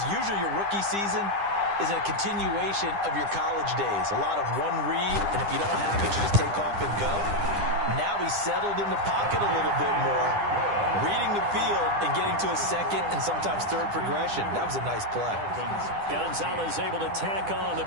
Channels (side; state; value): left; late; 10 ms